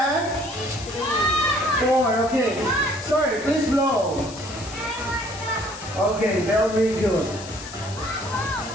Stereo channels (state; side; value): noise; left; hiss, 15 dB below the sound